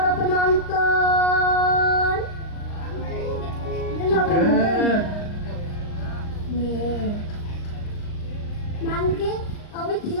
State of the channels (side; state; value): right; late; 39 ms